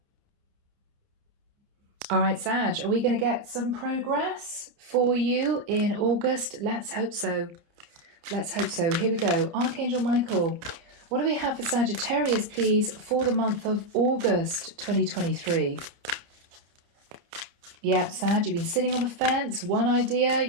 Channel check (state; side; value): late; left; 29 ms